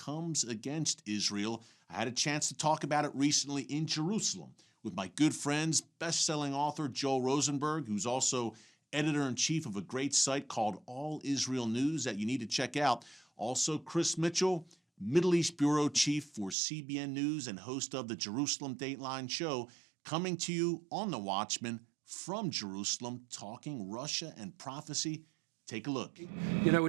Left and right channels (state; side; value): drops out; left; at 16.6 s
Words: against Israel. I had a chance to talk about it recently in Jerusalem with my good friends, best-selling author Joel Rosenberg, who's also editor-in-chief of a great site called All Israel News that you need to check out. Also, Chris Mitchell, Middle East Bureau Chief for CBN News and host of the Jerusalem Dateline show, coming to you on The Watchman from Jerusalem, talking Russia and prophecy. Take a look. You know, we're